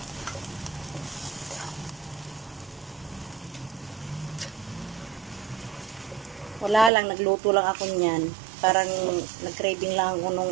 Wala lang, nagluto lang ako niyan. Parang nag-craving lang ako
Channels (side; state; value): left; drops out; at 6.9 s